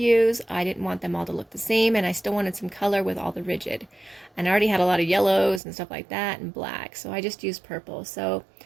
I didn't want them all to look the same, and I still wanted some color with all the rigid. And I already had a lot of yellows and stuff like that and black, so I just used purple. So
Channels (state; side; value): drops out; left; at 5.6 s